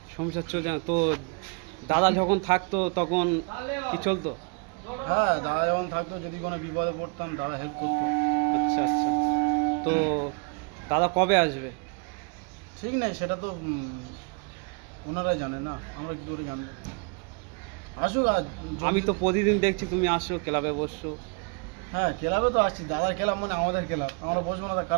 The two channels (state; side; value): quieter; left; 33.5 dB